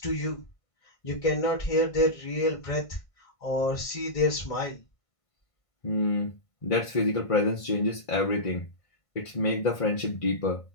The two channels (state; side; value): late; right; 1.5 ms